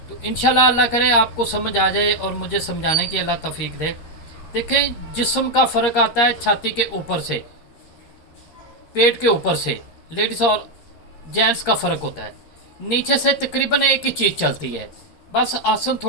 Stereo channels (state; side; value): late; right; 13 ms